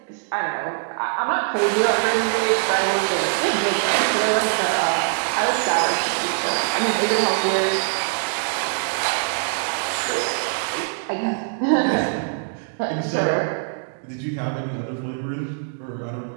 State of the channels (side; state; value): left; silent; digital silence